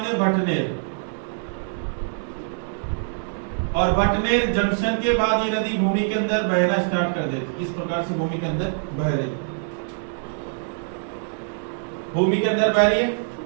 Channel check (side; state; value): left; silent; digital silence